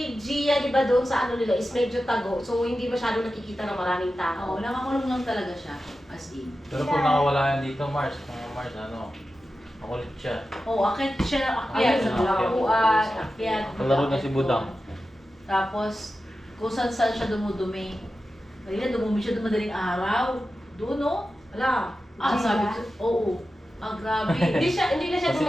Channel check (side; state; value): both; normal; correlation 0.93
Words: Gia, di ba, doon sa ano nila, is medyo tago. So, hindi masyado nakikita ng maraming tao. Oo, nakakulong lang talaga siya, as in. Pero kung nakawala yan dito, Mars, makulit siya. Oo, akit siya ng akyat sa Ayun, bulakuan, akyat. Kalaro na si Budang. Tapos, kung saan siya dumudumi. Kanina, dumumi siya madaling araw. Doon, no? Wala. Ah, Gia? sabi ko, oo. Grabe. Hindi na siya Kasi